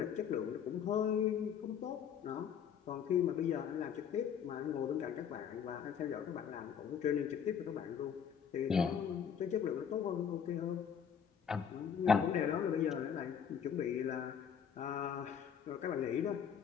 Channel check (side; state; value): right; quieter; 7.8 dB